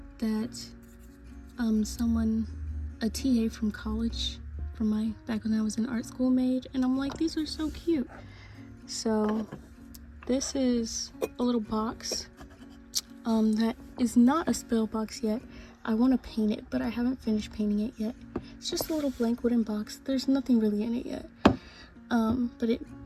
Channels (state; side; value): identical; both; correlation 1.00